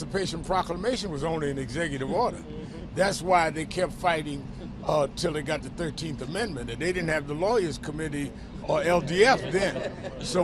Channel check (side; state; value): both; identical; correlation 1.00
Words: Proclamation was only an executive order. That's why they kept fighting till they got the 13th Amendment, and they didn't have the Lawyers Committee or LDF then. So